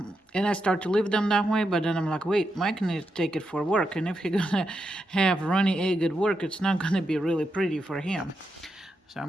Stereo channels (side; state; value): both; normal; correlation 0.85